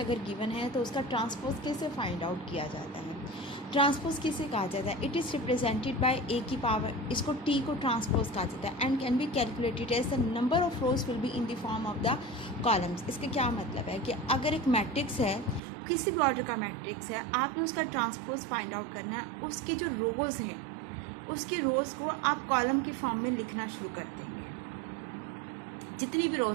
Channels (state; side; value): drops out; left; at 15.6 s